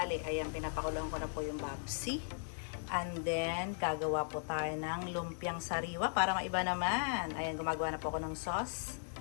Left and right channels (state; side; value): silent; right; digital silence